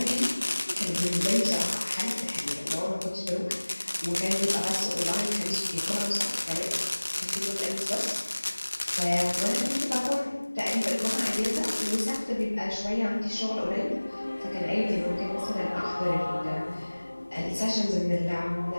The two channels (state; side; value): inverted; both; correlation -1.00